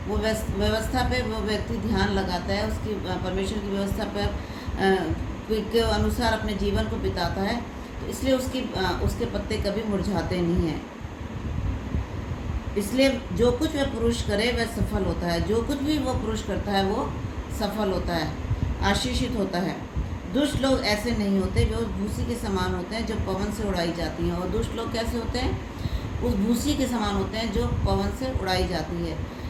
वो व्यवस्था पे वो व्यक्ति ध्यान लगाता है, उसकी परमेश्वर की व्यवस्था पर के अनुसार अपने जीवन को बिताता है, तो इसलिए उसके पत्ते कभी मुरझाते नहीं हैं। इसलिए जो कुछ वह पुरुष करे वह सफल होता है। जो कुछ भी वो पुरुष करता है वो सफल होता है, आशीषित होता है। दुष्ट लोग ऐसे नहीं होते, वे उस भूसी के समान होते हैं जो पवन से उड़ाई जाती हैं। और दुष्ट लोग कैसे होते हैं? उस भूसी के समान होते हैं जो पवन से उड़ाई जाती है।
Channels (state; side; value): identical; both; correlation 1.00